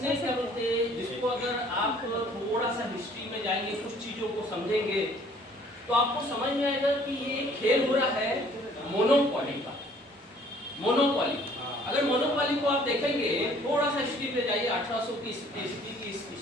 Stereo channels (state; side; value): normal; both; correlation 0.57